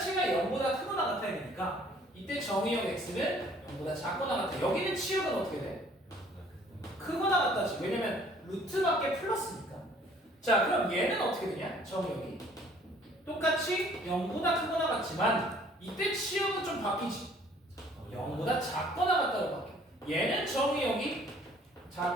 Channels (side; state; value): both; normal; correlation 0.57